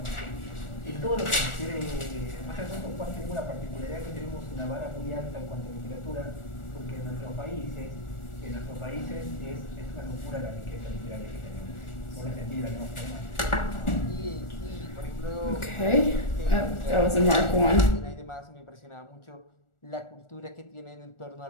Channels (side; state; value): right; late; 1.4 ms